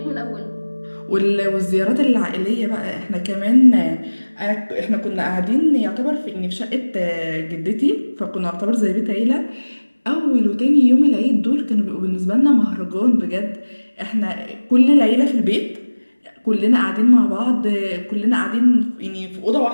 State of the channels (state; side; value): inverted; both; correlation -1.00